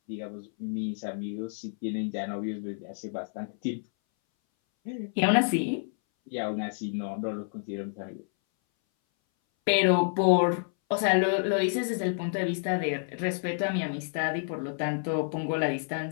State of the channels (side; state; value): right; silent; 58 dB below the other